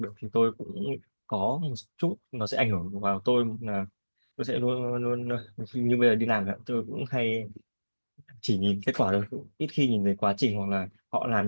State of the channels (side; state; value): both; inverted; correlation -1.00